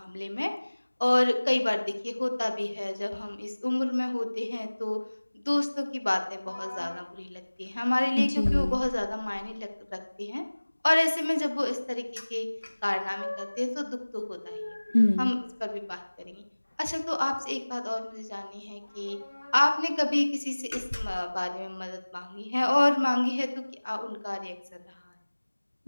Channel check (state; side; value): inverted; both; correlation -1.00